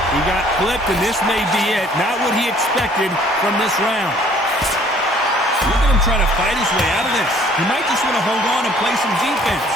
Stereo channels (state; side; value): normal; both; correlation 0.57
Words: He got clipped, and this may be it. Not what he expected from this round. Look at him trying to fight his way out of this. He might just want to hold on and play some defense.